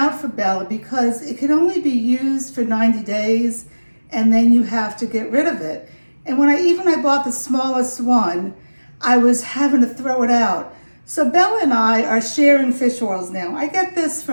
for Bella because it could only be used for 90 days and then you have to get rid of it. And when I bought the smallest one, I was having to throw it out. So Bella and I are sharing fish oils now. I get this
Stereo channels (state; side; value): inverted; both; correlation -1.00